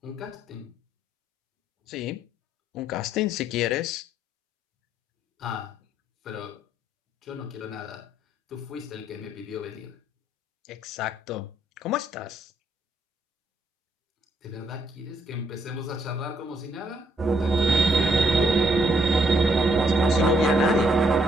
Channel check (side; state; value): both; normal; correlation 0.72